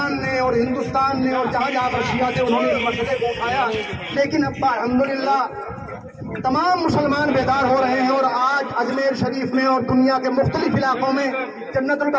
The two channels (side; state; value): both; identical; correlation 1.00